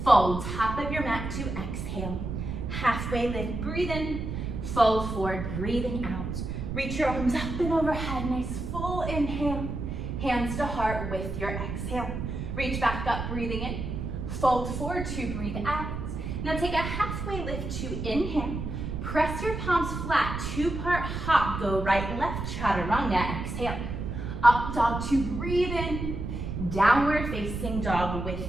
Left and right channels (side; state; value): right; noise; rumble, 5 dB below the sound